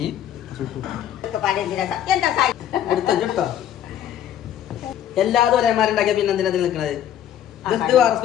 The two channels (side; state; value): right; quieter; 10.6 dB